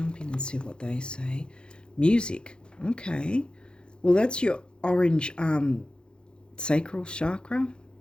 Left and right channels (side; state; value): right; late; 0.051 ms